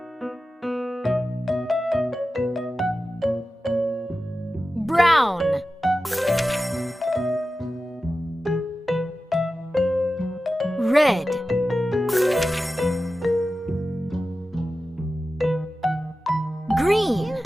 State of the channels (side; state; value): both; normal; correlation 0.94